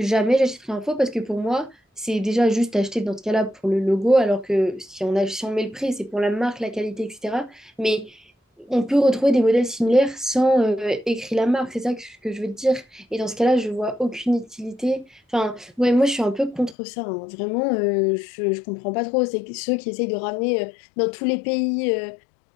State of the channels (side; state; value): right; drops out; at 16.8 s